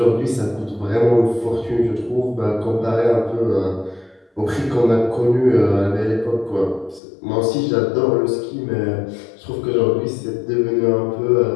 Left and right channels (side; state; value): right; drops out; at 7.0 s